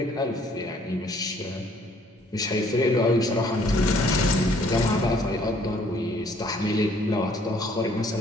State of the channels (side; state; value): both; normal; correlation 0.62